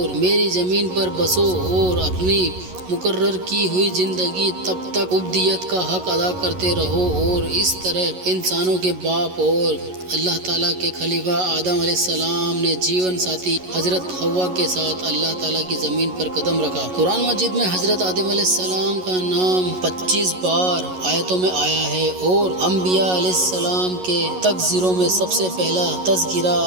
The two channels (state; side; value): late; left; 11 ms